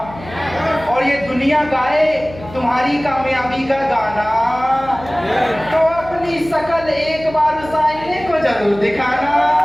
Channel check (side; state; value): left; noise; hum, 16 dB below the sound